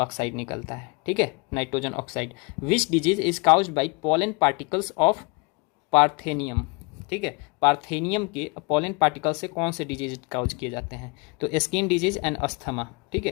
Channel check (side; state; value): right; quieter; 30.8 dB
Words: निकलता है, ठीक है, nitrogen oxide. Which disease is caused bye pollen particles of parthenium, ठीक है, पार्थेनियम के पोलन पार्टिकल से कौन से डिजीज काउज किए जाते हैं, तो स्किन डिजीज एंड अस्थमा, ठीक